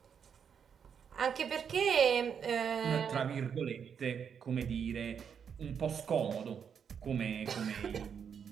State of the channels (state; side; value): quieter; left; 7.3 dB